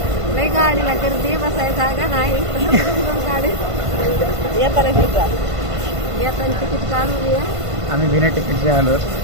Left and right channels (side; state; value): left; late; 1.5 ms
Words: लय गाडीला गर्दी, बसायला जागा नाही. गाडी येताना तिकीट काढून ये. आम्ही बिना तिकीटचे आलो.